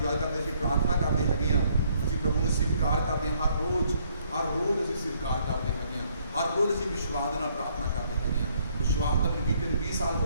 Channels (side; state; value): both; inverted; correlation -0.67